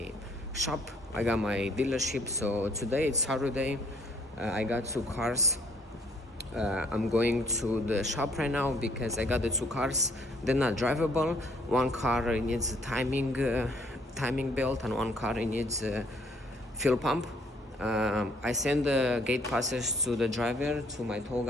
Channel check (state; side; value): normal; both; correlation 0.64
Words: shop, I got my dealership. So today it's Saturday. I got two cars. I'm going to the shop right now because I got the two cars. They're not drivable. One car needs a timing belt, and one car needs a fuel pump. I send the gate passes to the driver, to my tow